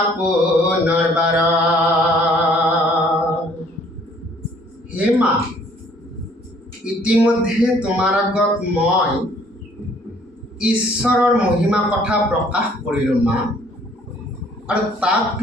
পুনৰবাৰ। হে মা, ইতিমধ্যে তোমাৰ আগত মই ঈশ্বৰৰ মহিমা কথা প্ৰকাশ কৰিলোঁ মা, আৰু তাক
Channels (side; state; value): both; normal; correlation 0.59